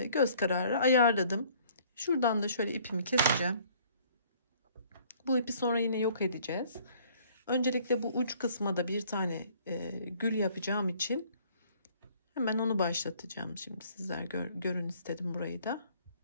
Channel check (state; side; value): inverted; both; correlation -0.58